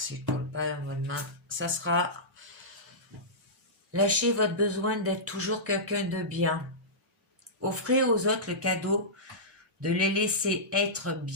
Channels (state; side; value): normal; both; correlation -0.16